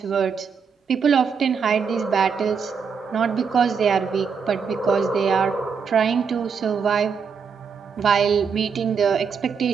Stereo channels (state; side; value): quieter; left; 6.1 dB